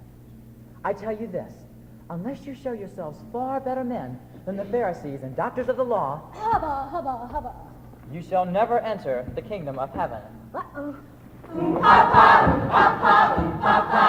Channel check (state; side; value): identical; both; correlation 1.00